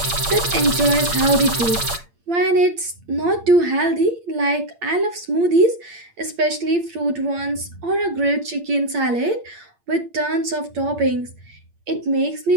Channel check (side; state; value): left; late; 8.7 ms